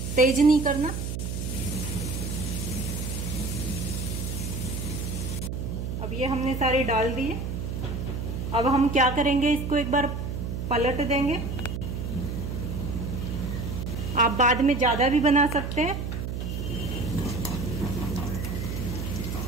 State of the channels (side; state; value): right; noise; hum, 4 dB below the sound